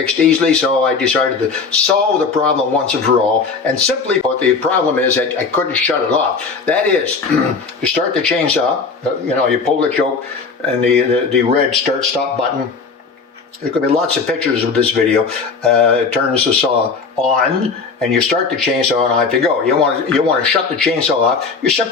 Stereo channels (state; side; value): quieter; right; 4.8 dB